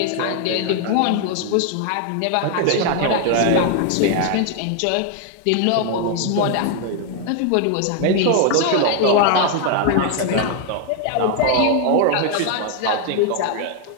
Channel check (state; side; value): different; both; correlation 0.00